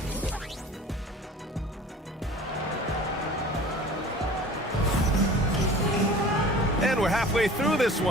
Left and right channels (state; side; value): normal; both; correlation 0.43